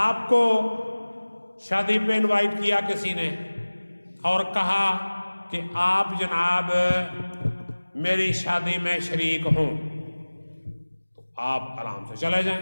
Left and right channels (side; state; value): both; inverted; correlation -1.00